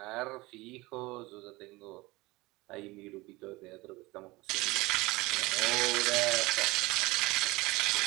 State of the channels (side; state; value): left; quieter; 21.8 dB